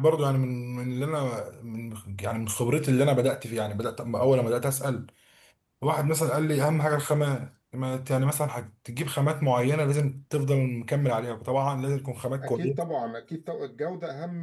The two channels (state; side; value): identical; both; correlation 1.00